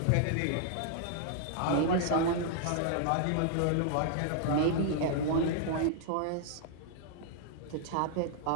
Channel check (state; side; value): different; both; correlation -0.01